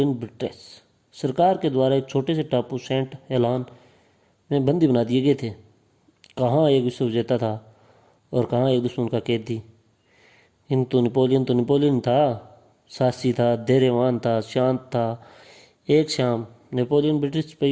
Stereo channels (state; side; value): identical; both; correlation 1.00